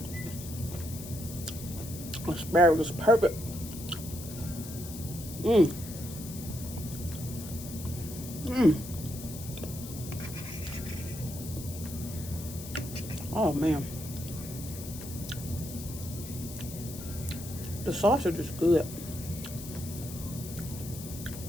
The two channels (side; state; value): left; noise; hiss, 12 dB below the sound